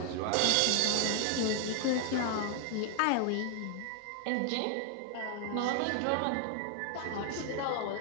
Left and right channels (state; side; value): different; both; correlation 0.00